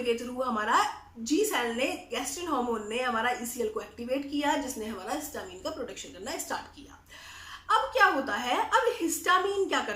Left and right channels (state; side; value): identical; both; correlation 1.00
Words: थ्रू हमारा जी सेल ने, गैस्ट्रिन हार्मोन ने हमारा ईसीएल को एक्टिवेट किया, जिसने हमारा हिस्टामिन का प्रोडक्शन करना स्टार्ट किया। अब क्या होता है, अब हिस्टामिन क्या